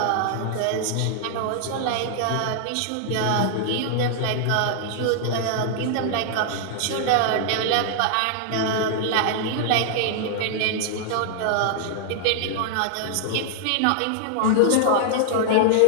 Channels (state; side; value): different; both; correlation -0.01